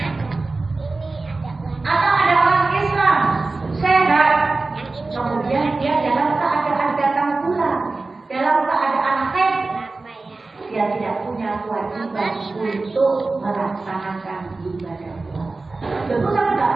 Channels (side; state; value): left; quieter; 3.5 dB